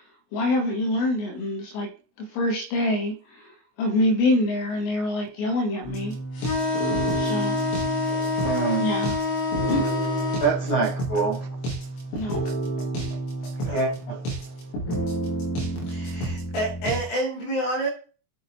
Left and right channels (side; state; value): right; late; 24 ms